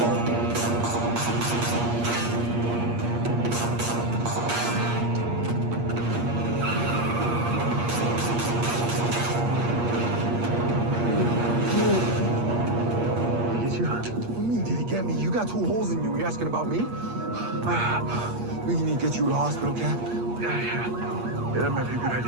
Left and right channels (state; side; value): late; left; 8.5 ms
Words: Get you? What do you mean, did he get me? You got 2 holes in you. You asking about me? We need to get you to the hospital, Cap. Yeah, that might be a good